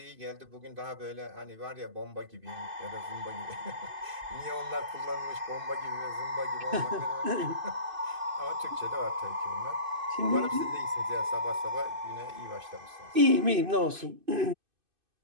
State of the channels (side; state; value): left; late; 2.5 ms